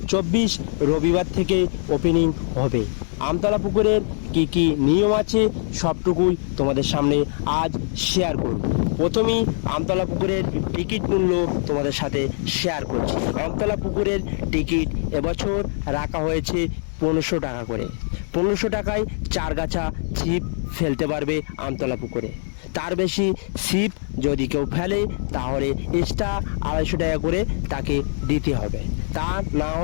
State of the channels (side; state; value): right; silent; 63 dB below the other